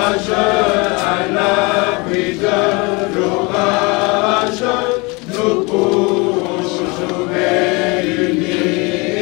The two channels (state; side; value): quieter; right; 27.3 dB